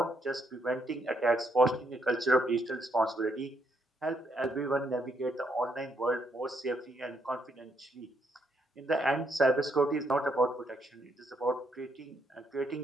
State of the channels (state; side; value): normal; both; correlation 0.75